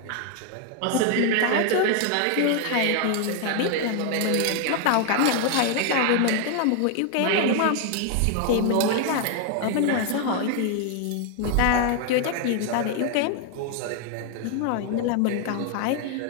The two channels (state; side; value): different; both; correlation 0.00